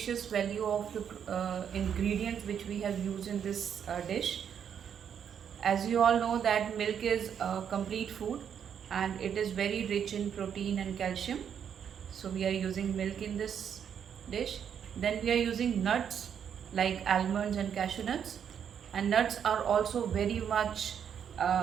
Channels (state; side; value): quieter; left; 8.2 dB